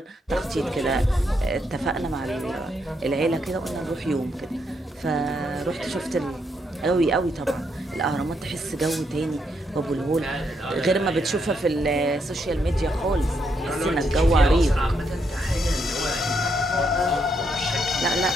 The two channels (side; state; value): both; normal; correlation 0.77